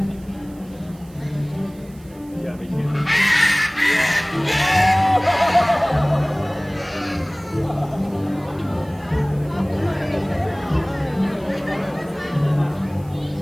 Yeah, they can't.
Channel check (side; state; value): right; noise; hiss, 27 dB below the sound